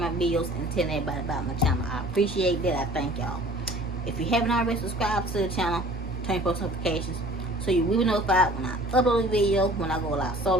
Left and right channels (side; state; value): both; normal; correlation 0.48